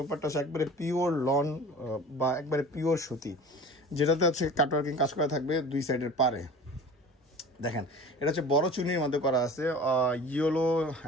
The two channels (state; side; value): normal; both; correlation 0.40